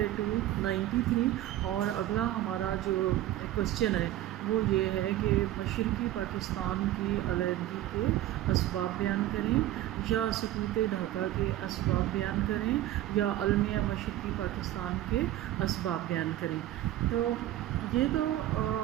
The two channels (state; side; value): quieter; left; 14.0 dB